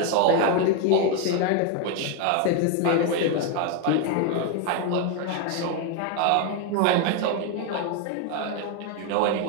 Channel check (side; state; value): both; different; correlation 0.01